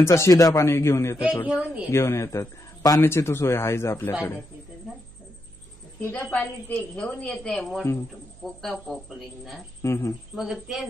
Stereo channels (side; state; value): right; noise; hum, 24 dB below the sound